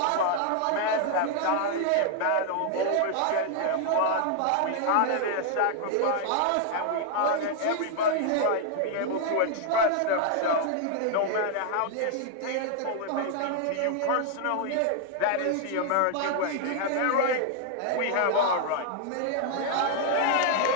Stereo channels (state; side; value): different; both; correlation 0.00